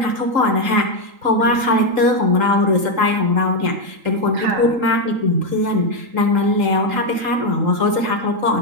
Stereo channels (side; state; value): left; late; 3.8 ms